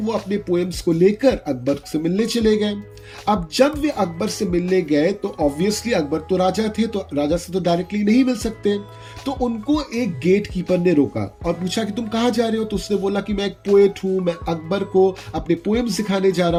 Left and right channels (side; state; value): both; identical; correlation 1.00